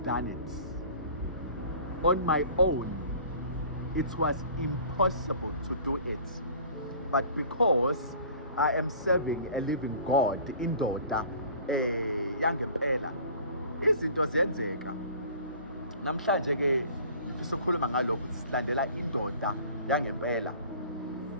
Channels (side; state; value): both; inverted; correlation -0.46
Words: done it. On my own it was impossible to do it. But because I am serving a living God, indoda yangempela, izinto ziyenzeka. Namhlanje ke ngifisa ukukhuluma ngalokho ukuthi silandela indoda yangempela.